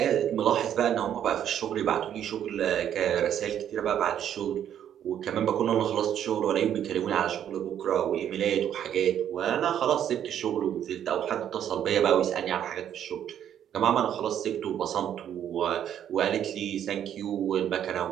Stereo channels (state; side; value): quieter; left; 9.9 dB